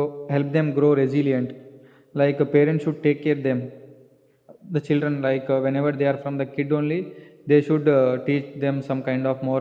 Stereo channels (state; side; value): identical; both; correlation 1.00